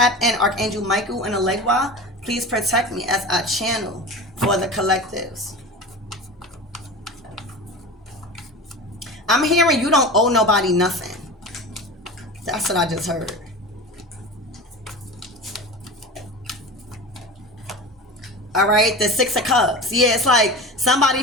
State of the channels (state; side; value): normal; both; correlation 0.31